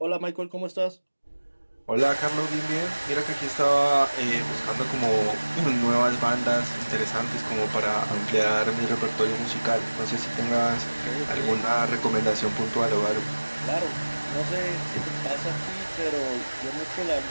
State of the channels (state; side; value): inverted; both; correlation -1.00